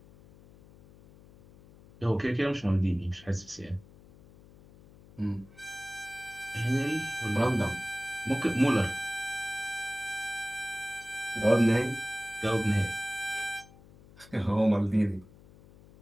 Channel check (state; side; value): noise; left; hum, 23 dB below the sound